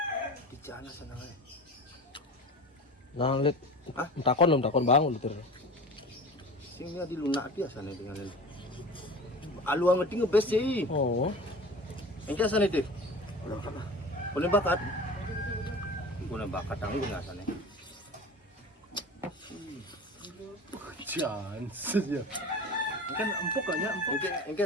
Bicara sana. Nah, lihat. Hah? Takon bang, udah Singnya di lunak biasa nih dengan ini. Alu ang ngerti ngebes sih. Oh. Engke asane deh. Udah kan lah. Punya bakat. Punya bakat tanggung asane. Chance ya. Kan empuk kayaknya empuk. Engke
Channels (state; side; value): normal; both; correlation 0.36